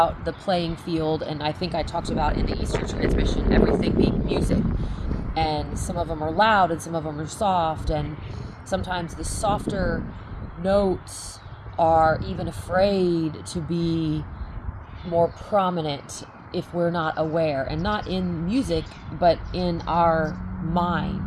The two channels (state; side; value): identical; both; correlation 1.00